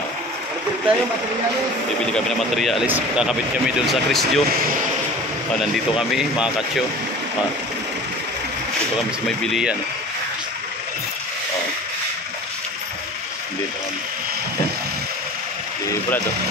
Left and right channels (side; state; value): both; normal; correlation 0.40